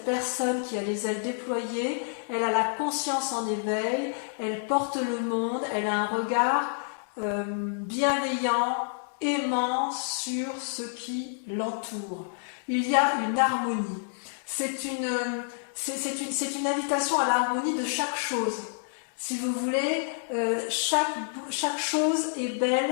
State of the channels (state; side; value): silent; right; digital silence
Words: personne qui a les ailes déployées, elle a la conscience en éveil, elle porte le monde, elle a un regard bienveillant, aimant sur ce qui l'entoure. Il y a une harmonie. C'est une invitation à l'harmonie de chaque chose. Si vous voulez, chaque chose est